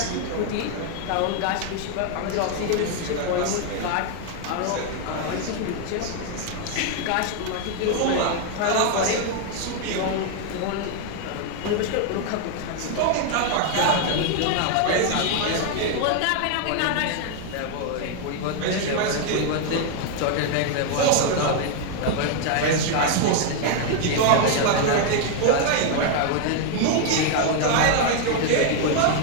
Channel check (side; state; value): both; different; correlation 0.00